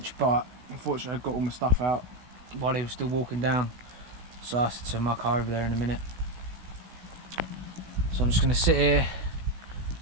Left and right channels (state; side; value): late; left; 16 ms